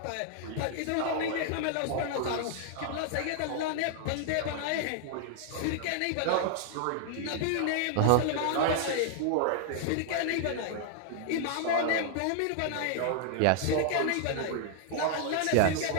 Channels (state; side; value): different; both; correlation -0.01